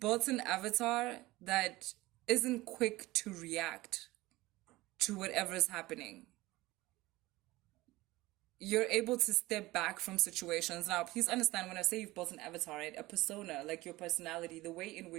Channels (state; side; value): quieter; left; 19.2 dB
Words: an avatar that isn't quick to react to whatever's happening. You're able to step back from situations. Now, please understand when I say you've built an avatar, right? A persona, like your personality, the way in